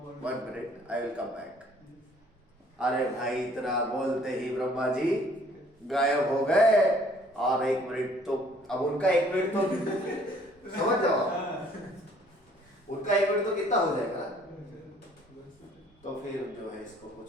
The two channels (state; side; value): normal; both; correlation 0.59